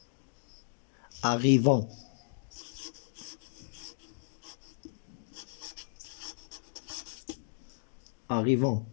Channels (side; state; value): right; silent; digital silence